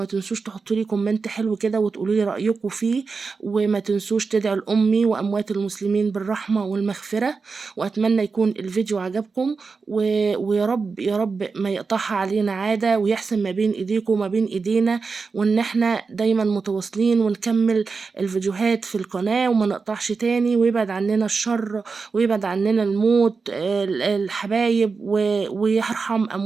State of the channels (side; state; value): left; quieter; 4.7 dB